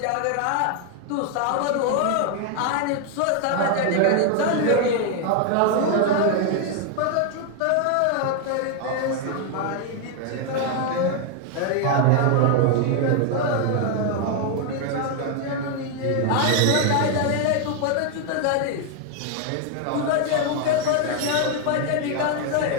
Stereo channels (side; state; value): both; different; correlation 0.00